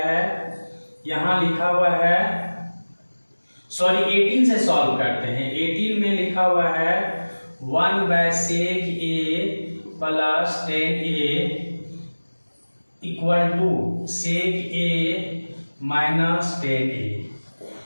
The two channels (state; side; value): inverted; both; correlation -1.00